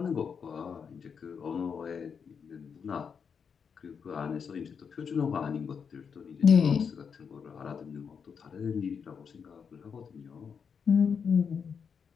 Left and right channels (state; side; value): quieter; right; 6.5 dB